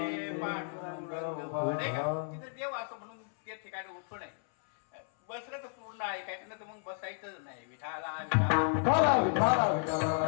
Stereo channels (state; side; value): silent; right; 56 dB below the other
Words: का, तिथे देव असं म्हणून त्या ठिकाणी उठू नये. बसलं तर पूर्ण ऐकायचं, ना तर मग बसायचंच नाही. विठाला